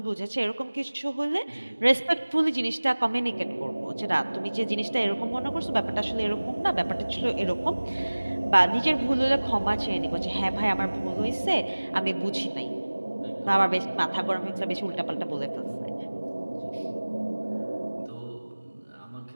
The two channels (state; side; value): inverted; both; correlation -1.00